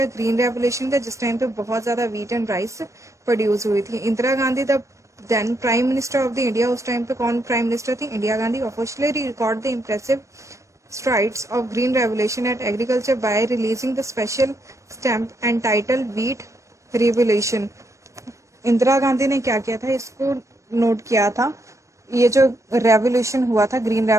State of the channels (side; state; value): left; late; 0.15 ms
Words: ग्रीन रेवोल्यूशन का, जिस टाइम पे बहुत ज्यादा व्हीट एंड राइस प्रोड्यूस हुई थी। Indira Gandhi the then prime minister of the India, उस टाइम पे कौन प्राइम मिनिस्टर थी? Indira Gandhi. Officially record the impressive strides of green revolution at agriculture by releasing the special stamp entitled wheat revolution। Indira Gandhi ने क्या किया था, इसको नोट किया था, ये जो रेवोल्यूशन हुआ था ग्रीन